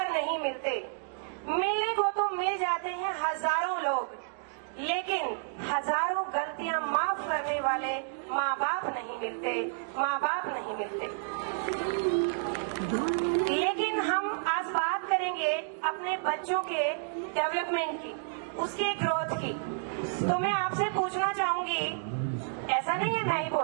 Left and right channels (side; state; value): left; silent; digital silence